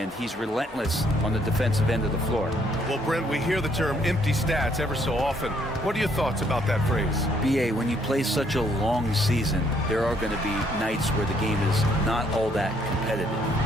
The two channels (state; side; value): normal; both; correlation 0.68